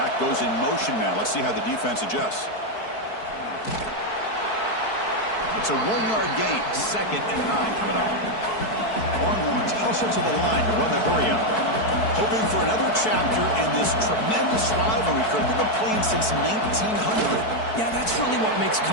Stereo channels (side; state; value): right; late; 4.6 ms